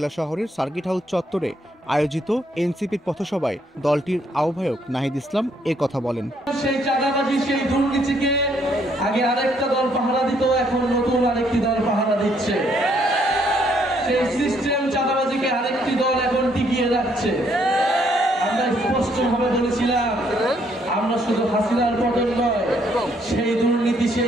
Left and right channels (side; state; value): both; normal; correlation 0.69